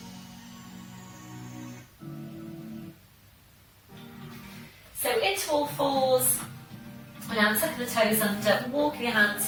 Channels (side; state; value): both; identical; correlation 1.00